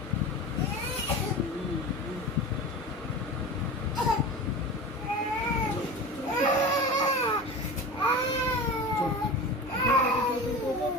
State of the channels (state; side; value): normal; both; correlation 0.31